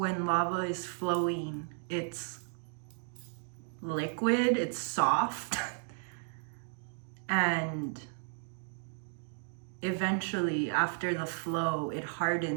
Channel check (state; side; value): silent; left; 55 dB below the other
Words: lava is flowing, it's liquid, it's soft, and eventually after the flow, it